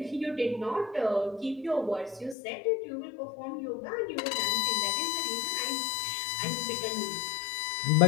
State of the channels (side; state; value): right; drops out; at 2.4 s